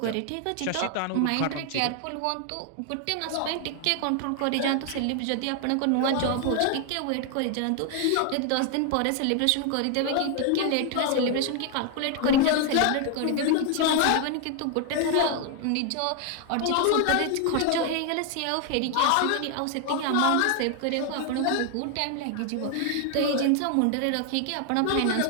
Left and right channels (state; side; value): different; both; correlation 0.00